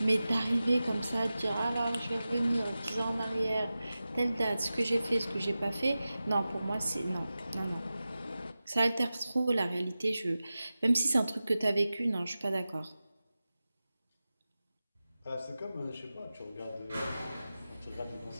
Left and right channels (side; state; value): both; inverted; correlation -0.95